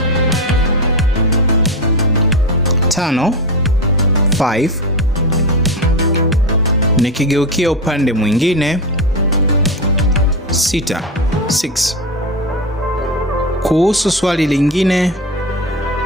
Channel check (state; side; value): normal; both; correlation 0.17